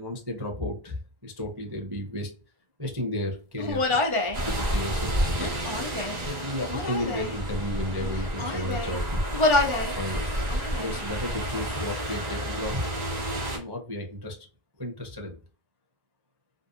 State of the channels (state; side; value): late; left; 1.9 ms